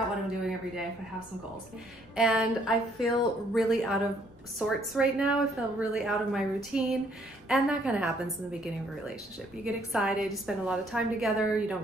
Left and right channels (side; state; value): left; noise; rumble, 28 dB below the sound